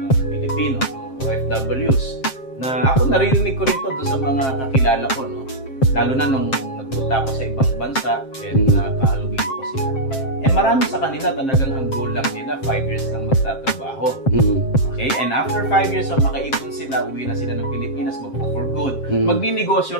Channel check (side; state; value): right; late; 7.5 ms